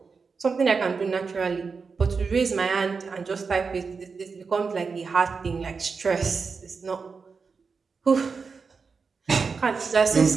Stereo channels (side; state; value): left; quieter; 5.0 dB